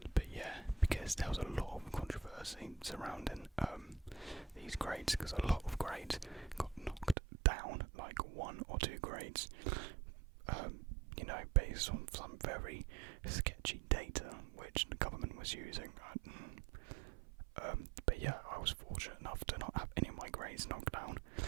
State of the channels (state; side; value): drops out; left; at 7.2 s